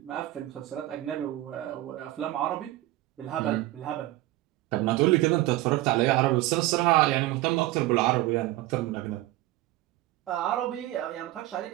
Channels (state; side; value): quieter; left; 17.0 dB